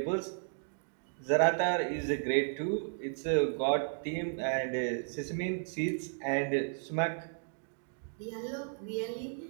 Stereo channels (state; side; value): silent; left; digital silence